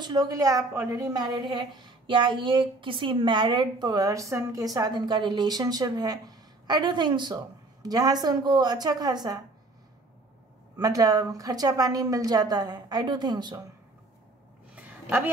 लोगों के लिए आप ऑलरेडी मैरिड है, या ये किसी मैरिड पर्सन के साथ इनका रिलेशनशिप है। आई डू थिंक सो, जहाँ से उनको अच्छा खासा मतलब खर्चा पानी मिल जाता है। I do think so. अभी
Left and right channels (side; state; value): left; quieter; 3.0 dB